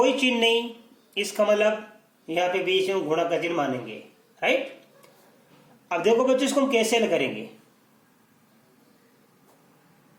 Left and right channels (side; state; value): both; identical; correlation 1.00